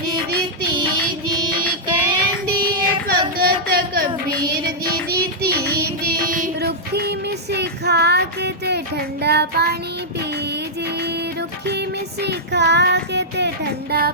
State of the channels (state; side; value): normal; both; correlation -0.09